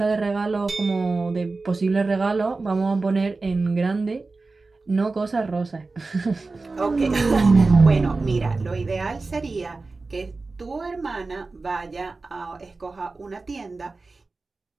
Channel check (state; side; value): quieter; left; 3.7 dB